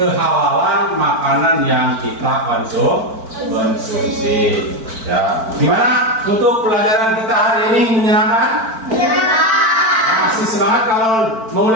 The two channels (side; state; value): left; late; 4.5 ms